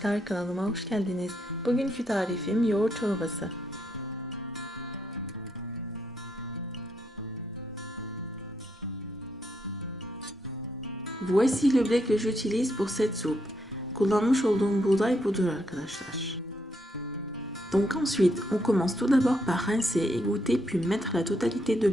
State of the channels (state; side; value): normal; both; correlation 0.77